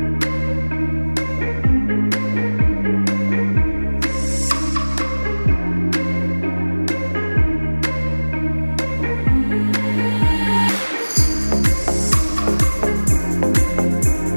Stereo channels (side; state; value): both; inverted; correlation -1.00